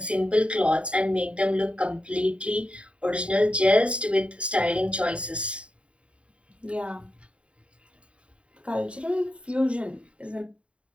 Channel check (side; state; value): left; late; 0.060 ms